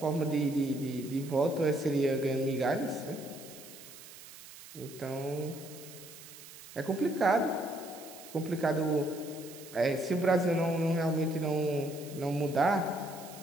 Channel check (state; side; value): noise; right; hiss, 17 dB below the sound